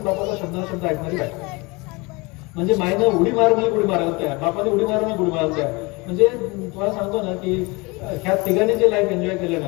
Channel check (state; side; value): quieter; right; 26.0 dB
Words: शब्द ऐकणारी बायको. म्हणजे मायनं उडी मार म्हणजे उडी मारायला तयार, बापाने उडी मार म्हणजे उडी मारायला तयार. म्हणजे तुम्हाला सांगतो ना की ह्या तिघांनी जे लाईफ एन्जॉय केलं ना,